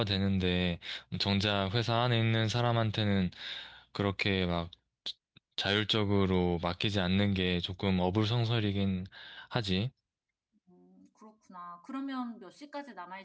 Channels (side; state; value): both; identical; correlation 1.00